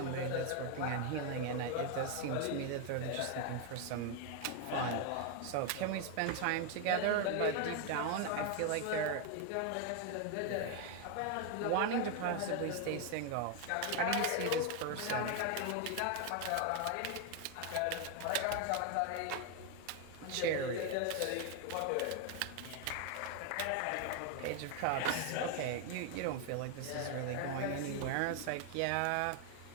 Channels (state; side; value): different; both; correlation 0.01